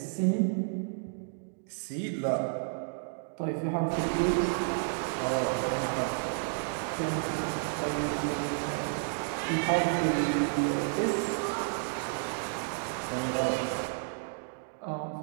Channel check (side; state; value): left; silent; digital silence